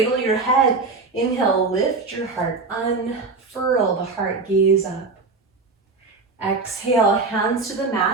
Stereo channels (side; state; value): left; quieter; 4.0 dB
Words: your head. Inhale, lift your heart, unfurl the heart, gaze up. Exhale, hands to the